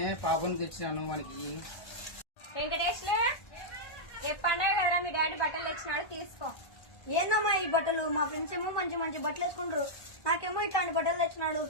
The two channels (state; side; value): late; right; 1.2 ms